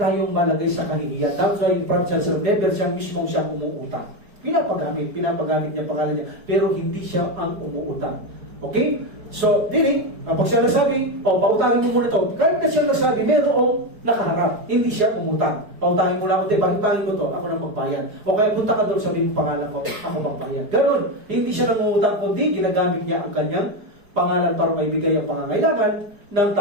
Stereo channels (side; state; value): left; late; 4.8 ms